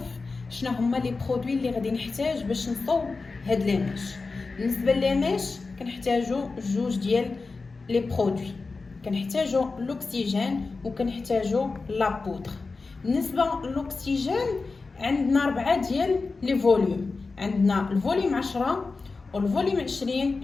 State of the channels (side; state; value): right; quieter; 4.0 dB